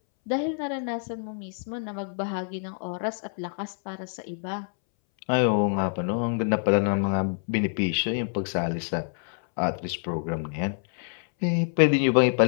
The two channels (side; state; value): right; silent; 60 dB below the other